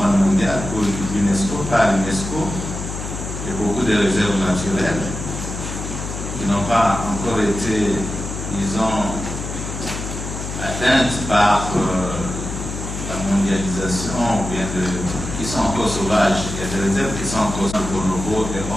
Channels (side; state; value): left; noise; hum, 7 dB below the sound